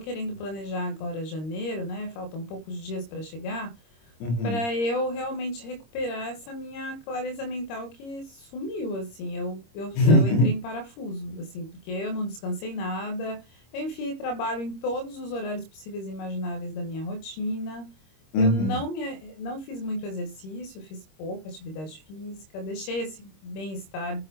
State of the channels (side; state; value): right; late; 26 ms